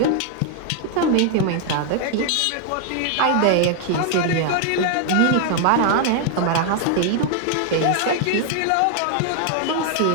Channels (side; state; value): both; different; correlation 0.00